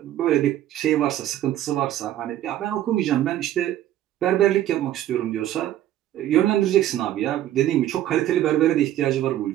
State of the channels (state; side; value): quieter; left; 12.8 dB